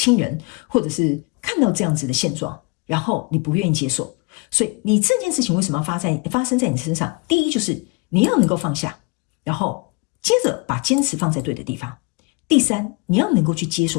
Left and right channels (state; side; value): quieter; right; 29.5 dB